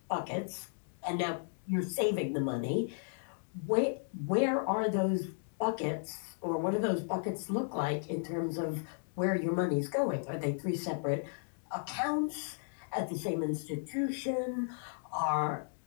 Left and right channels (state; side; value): silent; right; digital silence